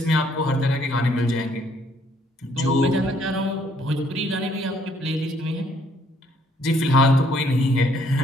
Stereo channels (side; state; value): both; normal; correlation 0.66